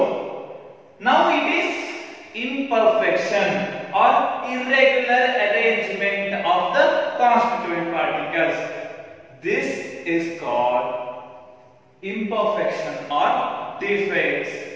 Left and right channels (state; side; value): identical; both; correlation 1.00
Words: now it is imperfection or irregular arrangement of the constituent particles. This is called imperfection or defects